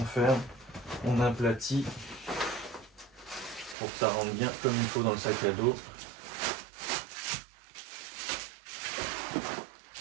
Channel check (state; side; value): drops out; left; at 3.8 s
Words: ferme, on aplatit pour que ça rentre bien comme il faut dans le sac à dos.